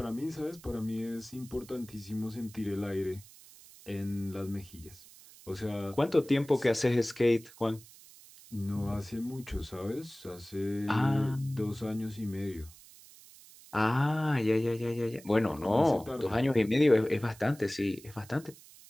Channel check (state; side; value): noise; right; hiss, 21 dB below the sound